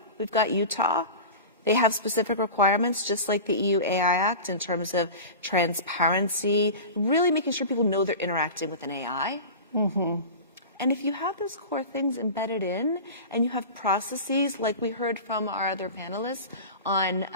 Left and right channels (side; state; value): both; inverted; correlation -0.32